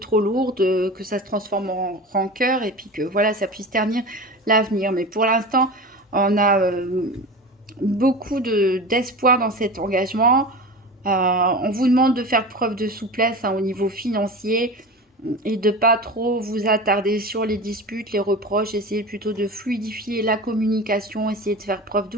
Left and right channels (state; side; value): normal; both; correlation 0.31